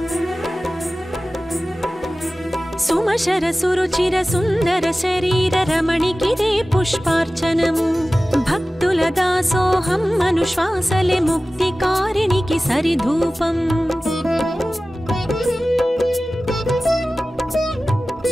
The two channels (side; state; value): both; normal; correlation 0.96